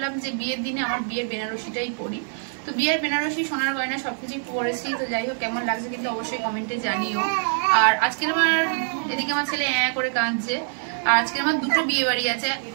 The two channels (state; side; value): silent; left; digital silence